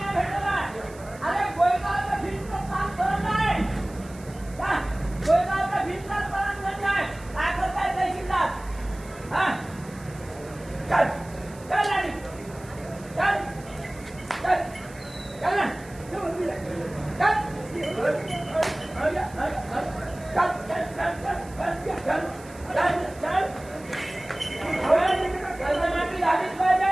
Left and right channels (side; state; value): right; noise; hiss, 22 dB below the sound